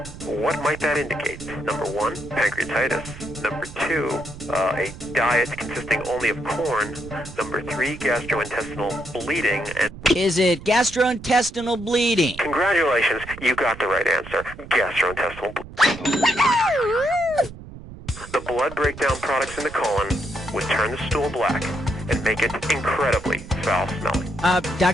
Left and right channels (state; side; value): noise; right; rumble, 15 dB below the sound